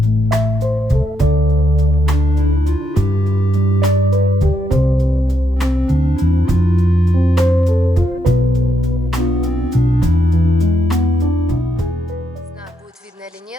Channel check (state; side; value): normal; both; correlation 0.79